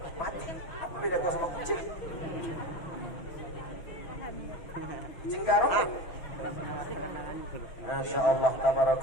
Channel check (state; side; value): late; right; 6.1 ms